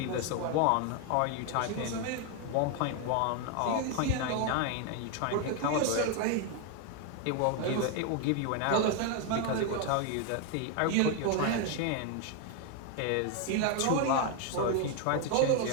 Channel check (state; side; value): different; both; correlation 0.01